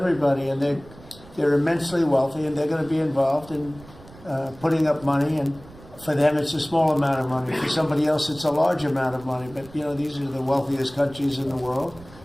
and they're immensely wealthy, and they're going to be involved in putting up money, and for them it's a small amount of money. For somebody else it's a large amount of money, but you know, these are the wealthiest countries in the world,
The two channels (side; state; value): right; noise; rumble, 20 dB below the sound